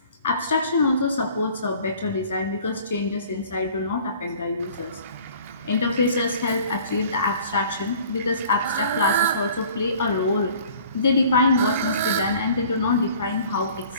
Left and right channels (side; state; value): both; inverted; correlation -0.50